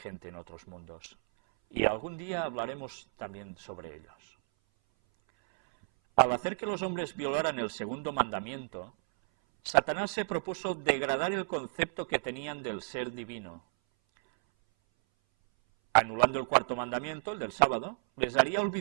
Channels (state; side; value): silent; left; 56 dB below the other